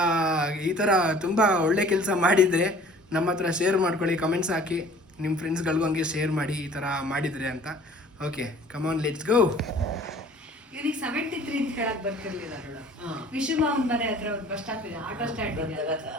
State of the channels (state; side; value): normal; both; correlation 0.50